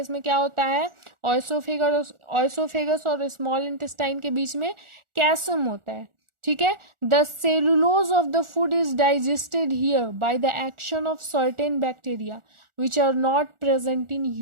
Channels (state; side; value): late; left; 1.4 ms